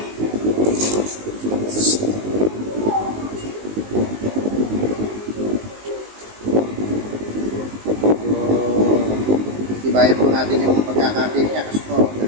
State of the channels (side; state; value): left; late; 19 ms